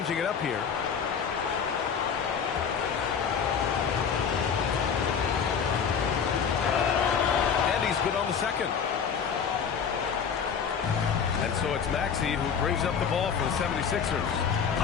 it up here. And he's good on the second. And so it's Maxey who brings up the ball for the 76ers.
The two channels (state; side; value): quieter; right; 6.9 dB